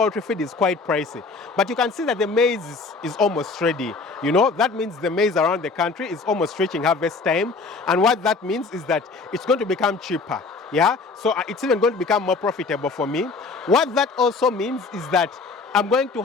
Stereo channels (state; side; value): quieter; right; 4.1 dB